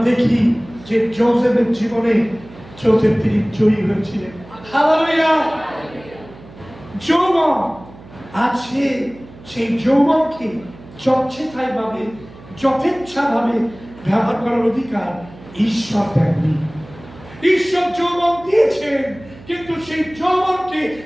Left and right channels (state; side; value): noise; right; hum, 20 dB below the sound